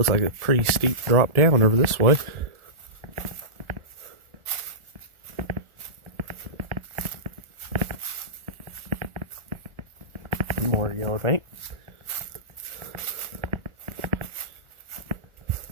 like a pretty steep drop down over this way. More yellow paint.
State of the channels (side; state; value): left; late; 1.4 ms